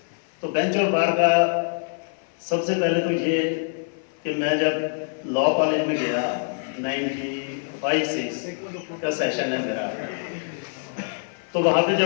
तो बेंच और बार का सबसे पहले तो ये कि मैं जब लॉ कॉलेज में गया 95-6 का सेशन है मेरा, तो वहाँ पे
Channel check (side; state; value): right; silent; 58 dB below the other